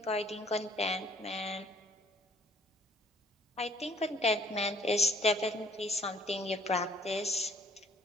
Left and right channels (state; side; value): normal; both; correlation 0.59